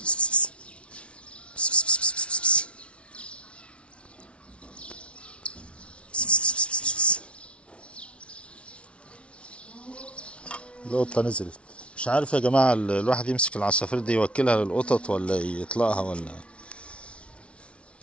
القطة نزلت. مش عارف يا جماعة، الواحد يمسك العصافير دي يوكلها للقطط ولا يطلقها، ولا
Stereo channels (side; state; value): right; late; 0.060 ms